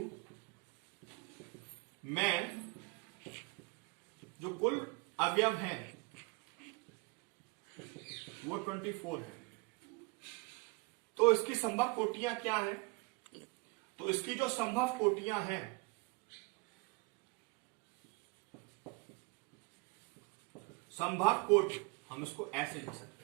में जो कुल अवयव हैं वो 24 है, तो इसकी संभव कोटियां क्या है? तो इसकी जो संभव कोटियां हैं, संभव कोटि हम इसको ऐसे लिख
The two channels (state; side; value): quieter; left; 27.1 dB